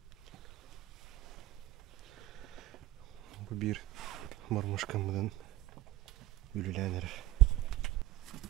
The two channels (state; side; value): quieter; left; 16.1 dB